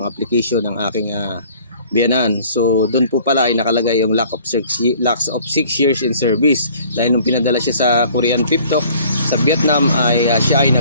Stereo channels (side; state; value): both; inverted; correlation -0.53